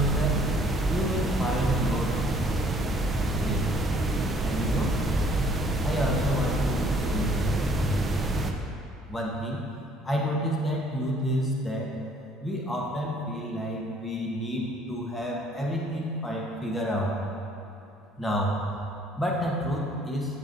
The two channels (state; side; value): normal; both; correlation 0.60